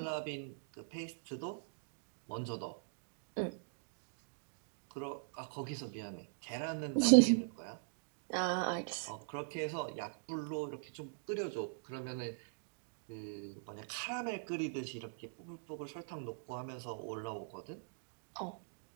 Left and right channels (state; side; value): silent; left; digital silence